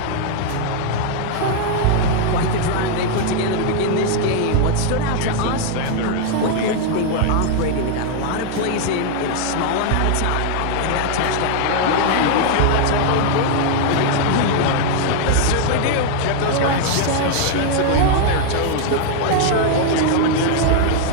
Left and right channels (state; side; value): different; both; correlation 0.00